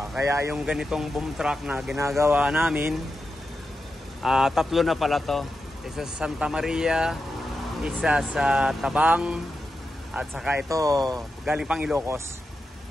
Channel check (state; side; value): normal; both; correlation 0.89